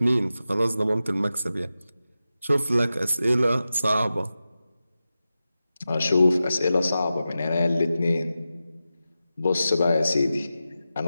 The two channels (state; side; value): inverted; both; correlation -0.93